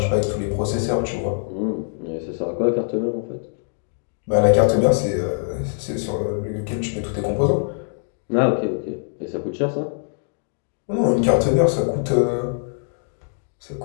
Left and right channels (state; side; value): silent; right; digital silence